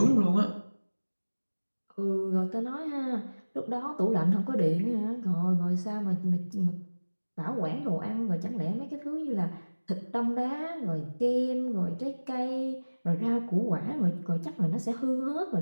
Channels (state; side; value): inverted; both; correlation -1.00